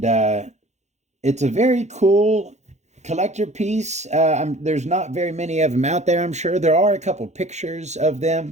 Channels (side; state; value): left; late; 0.33 ms